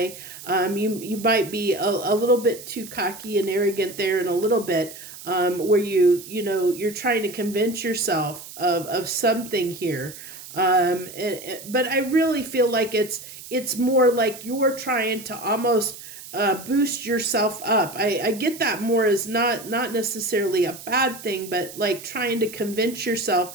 You might be a little bit too cocky and arrogant there, and a little bit where you're trying to convince yourself of something here. But I really feel like it's more like you're trying to almost boost yourself up. I get that more as not necessarily a bad thing, but like trying to convince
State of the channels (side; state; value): right; noise; hiss, 15 dB below the sound